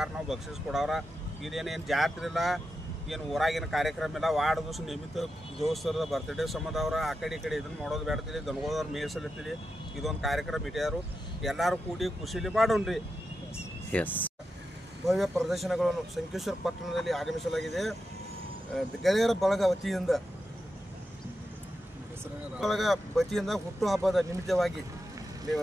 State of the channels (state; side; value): normal; both; correlation 0.88